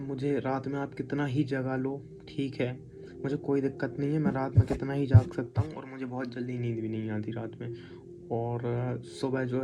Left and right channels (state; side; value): identical; both; correlation 1.00